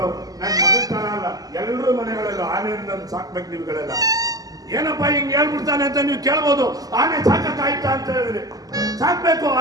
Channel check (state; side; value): late; left; 0.18 ms